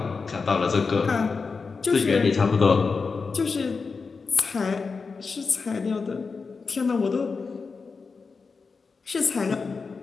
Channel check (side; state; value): right; quieter; 4.8 dB